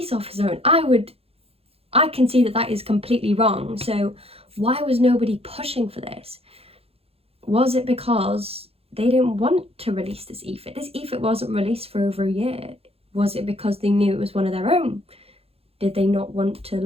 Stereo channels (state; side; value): late; left; 0.29 ms